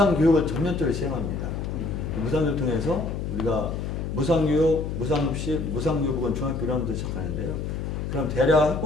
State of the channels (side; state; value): left; noise; hum, 4 dB below the sound